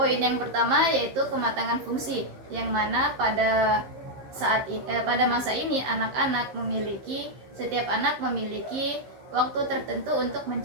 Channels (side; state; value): left; late; 15 ms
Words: yang pertama yaitu kematangan fungsi, yang mana pada masa ini setiap anak memiliki waktu tertentu untuk